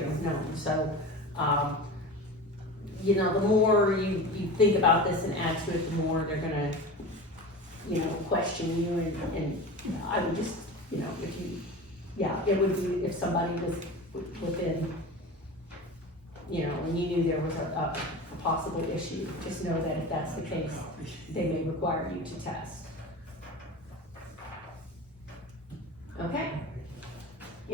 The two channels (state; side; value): normal; both; correlation 0.31